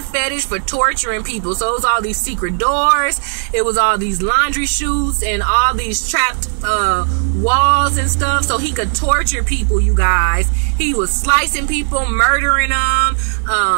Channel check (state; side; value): silent; left; 67 dB below the other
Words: fetish for torturing people. So it was all these secret doors. It was all these laundry chutes and all these trapped walls and stuff. So he could torture people, you guys. He was slicing people, murdering them,